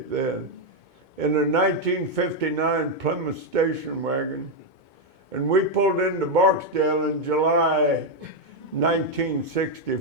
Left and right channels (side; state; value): left; late; 2.2 ms